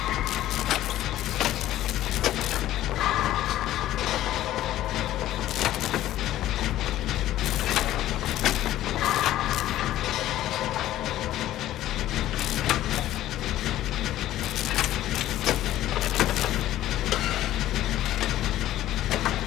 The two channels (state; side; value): quieter; right; 13.8 dB